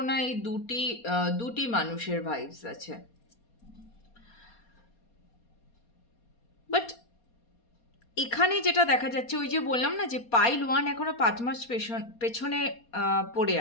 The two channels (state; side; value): late; right; 4.2 ms